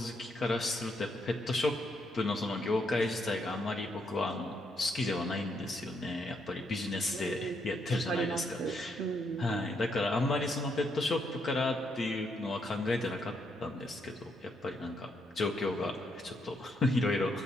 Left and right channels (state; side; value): normal; both; correlation 0.76